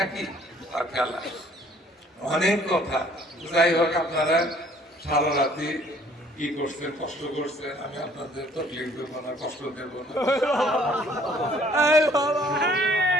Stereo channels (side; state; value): both; normal; correlation 0.58